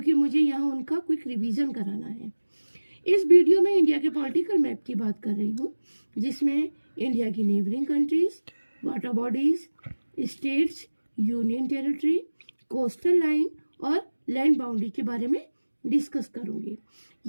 मुझे यहाँ उनका क्विक रिवीजन कराना है। इस वीडियो में इंडिया के पॉलिटिकल मैप की बात कर रही हूँ, जिसमें इंडिया की neighbouring countries, water bodies, states, union territory, coastal line और लैंड बाउंड्री के बारे में डिस्कस करूंगी।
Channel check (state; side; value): inverted; both; correlation -1.00